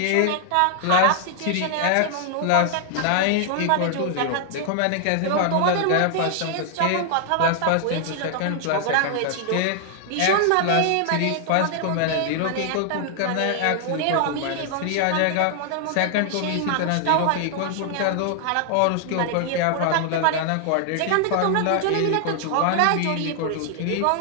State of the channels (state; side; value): different; both; correlation 0.00